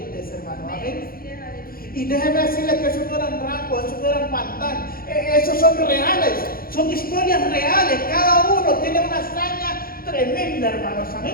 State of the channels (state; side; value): late; right; 0.42 ms